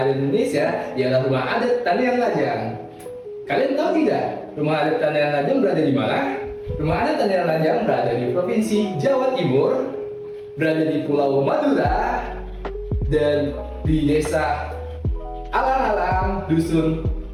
di Indonesia ialah rumah adat Tanian Lajang. Kalian tahu tidak, rumah adat Tanian Lajang berada di mana? Rumah adat Tanian Lajang berada di Provinsi Jawa Timur, berada di Pulau Madura, dan di Desa Alang-alang, Dusun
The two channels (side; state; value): both; identical; correlation 1.00